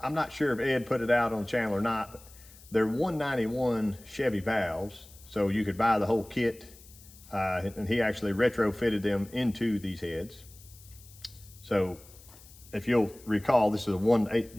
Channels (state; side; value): noise; left; hiss, 22 dB below the sound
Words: not sure if Ed put it out on the channel or not, but they're 191 Chevy valves. So you could buy the whole kit. And he actually retrofitted them into these heads. So if you'll recall, this is a